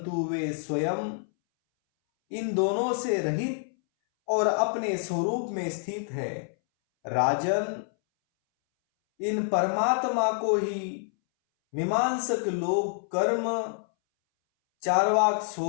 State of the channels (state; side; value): silent; right; 60 dB below the other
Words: वे स्वयं इन दोनों से रहित और अपने स्वरूप में स्थित है। राजन, इन परमात्मा को ही मीमांसक लोग कर्म, चार्वाक